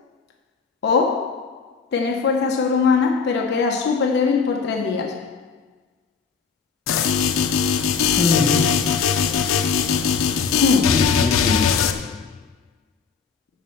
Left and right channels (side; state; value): right; quieter; 5.6 dB